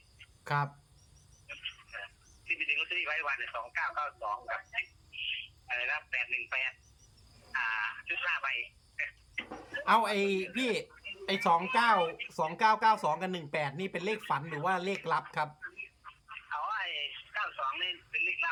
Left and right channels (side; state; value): both; identical; correlation 1.00